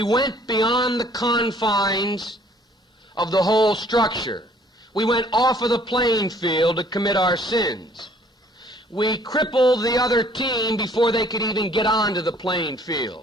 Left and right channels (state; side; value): normal; both; correlation 0.59